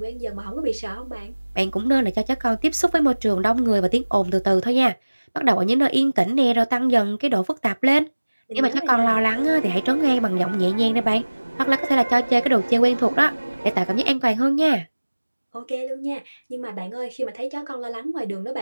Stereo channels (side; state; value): both; inverted; correlation -1.00